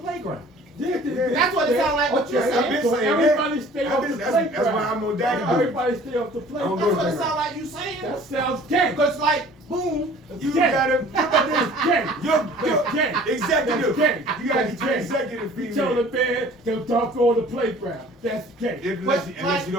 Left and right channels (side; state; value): both; normal; correlation 0.49